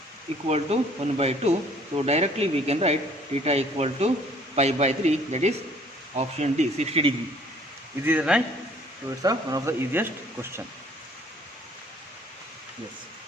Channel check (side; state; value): both; normal; correlation 0.57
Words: equal to 1 by 2. So directly we can write theta equal to pi by 3, that is option D, 60 degree. Is it right? So it's one of the easiest question. Yes.